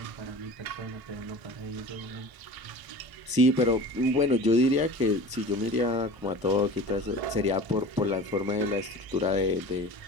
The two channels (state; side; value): late; left; 1.0 ms